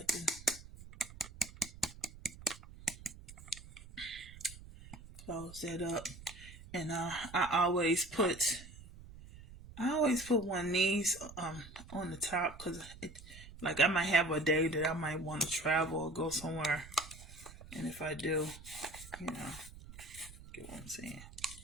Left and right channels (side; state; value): right; noise; rumble, 17 dB below the sound